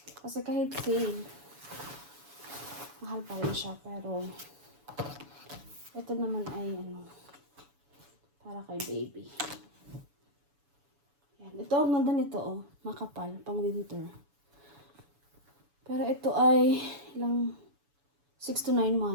Kasi kahit sale, mahal pa rin siya. Pero, ito naman ay para kay baby. Yan. Ito, ang ganda nito makapal, pang winter. Pero ito ay 6 to 9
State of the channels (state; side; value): late; left; 7.0 ms